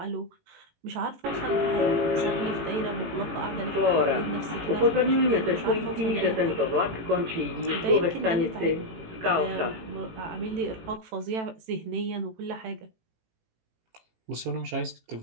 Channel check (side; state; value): left; late; 18 ms